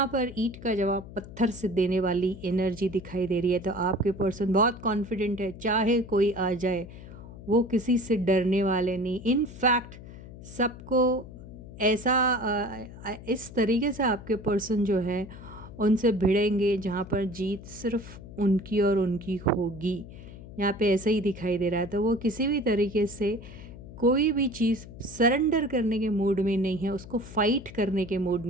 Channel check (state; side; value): noise; left; hum, 15 dB below the sound